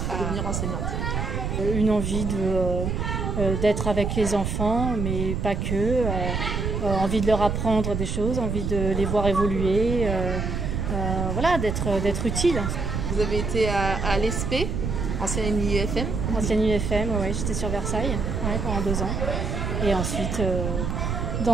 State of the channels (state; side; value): noise; right; rumble, 2 dB below the sound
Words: à devenir enseignante? Une envie d'être avec les enfants, mais pas que. Envie de leur apprendre des choses, envie de les voir évoluer, voilà, d'être utile. Vous avez été à l'ESP, ancienne UFM? Ancienne UFM, oui, j'étais sur Versailles pendant 2 ans. Et ensuite,